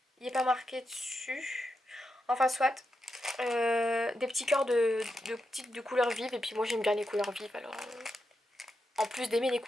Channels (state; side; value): normal; both; correlation 0.86